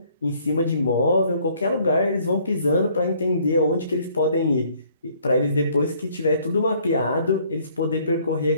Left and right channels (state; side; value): inverted; both; correlation -0.62